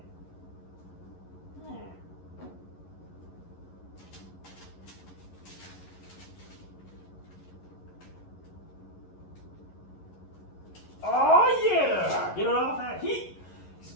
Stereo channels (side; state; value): right; late; 11 ms